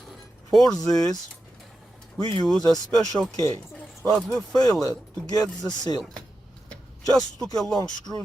For this, we use a special key, but we failed to get the seal. Just took a long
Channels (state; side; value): normal; both; correlation 0.90